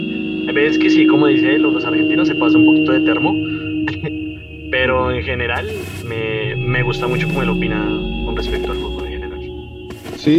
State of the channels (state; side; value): identical; both; correlation 1.00